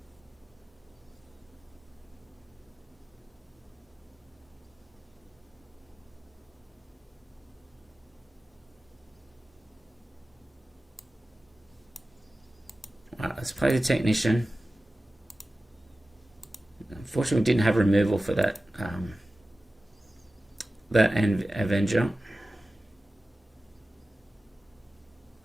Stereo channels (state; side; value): normal; both; correlation 0.95